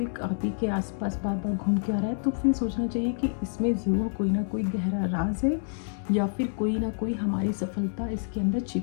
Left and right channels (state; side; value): silent; right; digital silence